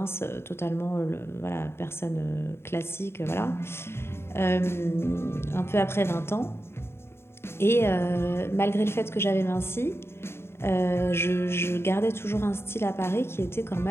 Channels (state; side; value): late; right; 0.12 ms